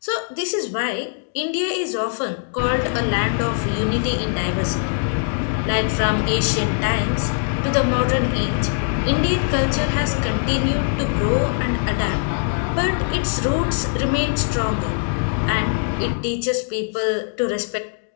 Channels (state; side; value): silent; right; digital silence